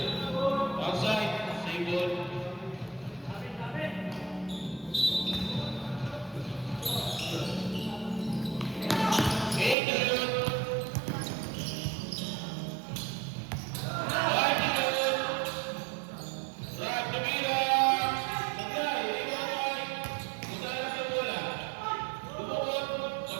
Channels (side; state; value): left; drops out; at 9.8 s